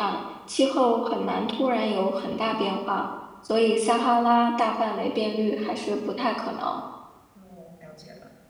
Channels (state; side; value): identical; both; correlation 1.00